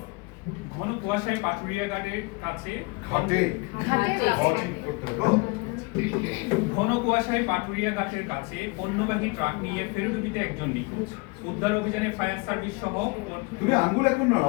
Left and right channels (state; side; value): quieter; right; 27.4 dB